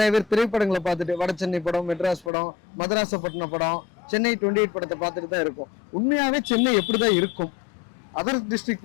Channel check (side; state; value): right; drops out; at 2.3 s